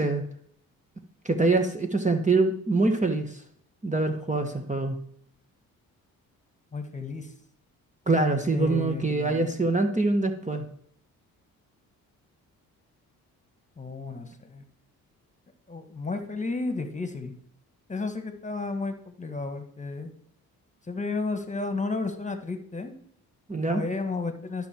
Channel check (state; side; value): normal; both; correlation 0.61